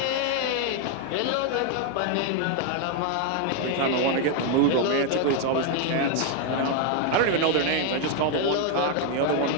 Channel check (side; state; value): both; different; correlation 0.00